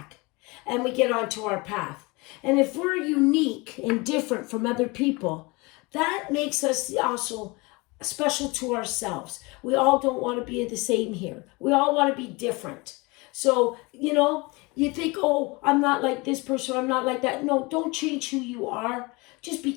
and we get onto our path. And if we're unique and different from other people, that makes us also special to ourselves. We all don't want to be the same here. We all want to be different. So, you think, oh, I'm not like this person, I'm not like that. No, don't change who you are. Just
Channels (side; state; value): right; quieter; 25.8 dB